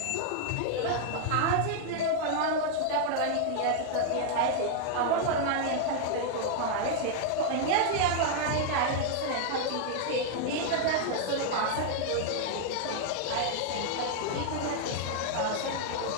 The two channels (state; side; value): different; both; correlation 0.00